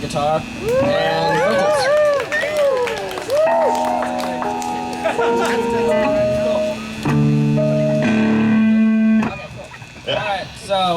and vocals. Alright, so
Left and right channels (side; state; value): both; identical; correlation 1.00